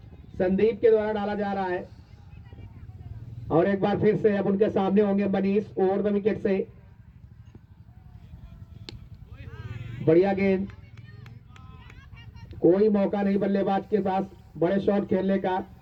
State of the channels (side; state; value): both; identical; correlation 1.00